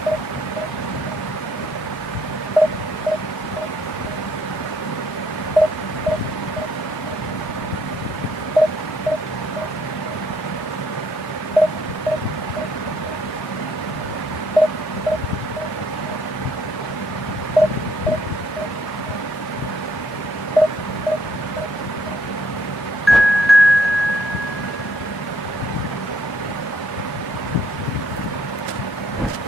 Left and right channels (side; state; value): both; normal; correlation 0.69